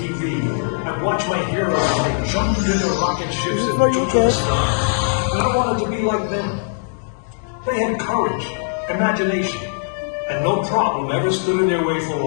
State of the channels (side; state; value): right; silent; digital silence